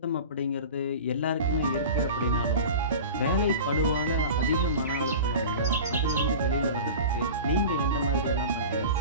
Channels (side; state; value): both; inverted; correlation -0.34